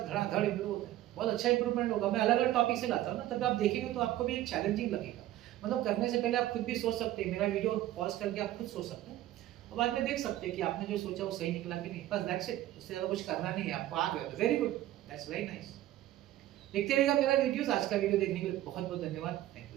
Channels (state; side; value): quieter; left; 14.2 dB